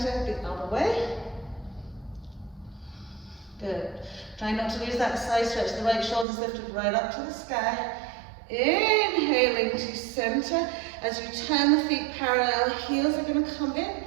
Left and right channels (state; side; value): drops out; left; at 6.2 s